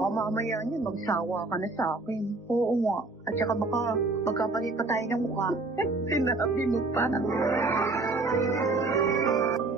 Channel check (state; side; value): quieter; left; 3.3 dB